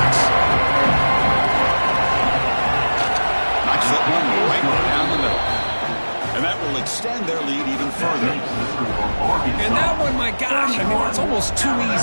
Knocks that one right down the middle. And that will extend their lead even further. And that one, my gosh, I mean, it's almost too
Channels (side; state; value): both; inverted; correlation -1.00